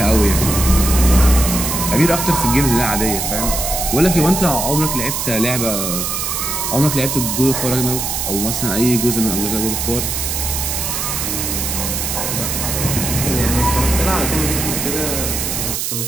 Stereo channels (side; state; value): right; noise; hiss, 2 dB below the sound